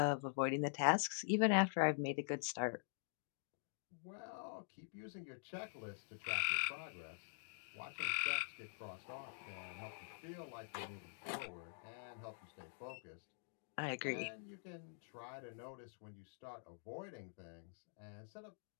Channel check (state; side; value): silent; right; digital silence